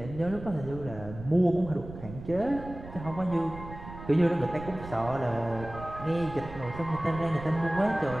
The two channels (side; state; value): right; noise; rumble, 13 dB below the sound